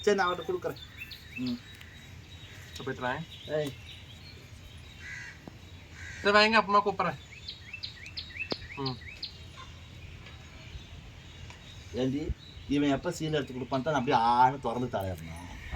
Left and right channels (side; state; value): both; identical; correlation 1.00